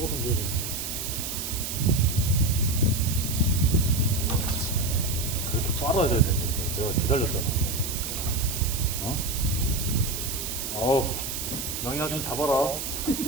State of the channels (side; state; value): right; noise; hiss, 5 dB below the sound